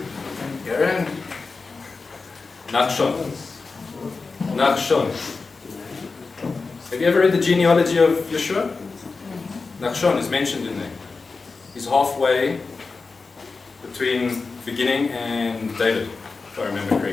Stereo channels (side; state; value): right; quieter; 4.2 dB